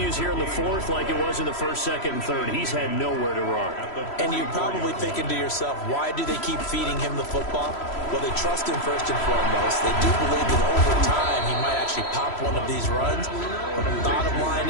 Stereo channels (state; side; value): late; right; 3.0 ms